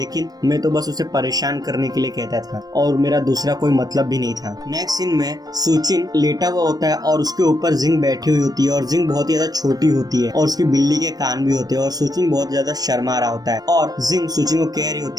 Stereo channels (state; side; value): late; left; 0.19 ms